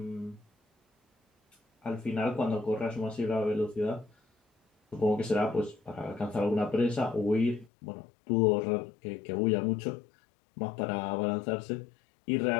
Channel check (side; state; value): right; drops out; at 7.7 s